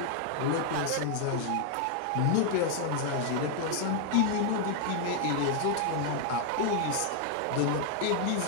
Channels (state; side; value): different; both; correlation 0.00